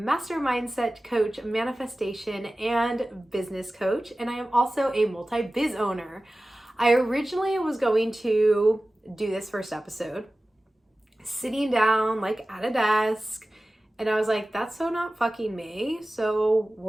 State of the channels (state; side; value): normal; both; correlation 0.96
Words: mindset coach, manifestation, and business coach. And I am also a multi-biz owner. I originally was going to do this first episode sitting down like at a desk, and I was like, that's so not fucking me. So